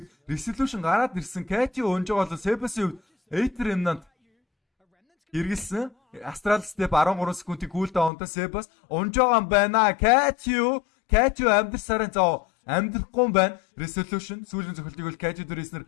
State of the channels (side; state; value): right; drops out; at 8.1 s